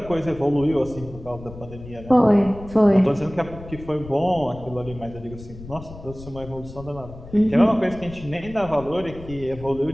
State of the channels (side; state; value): left; noise; rumble, 15 dB below the sound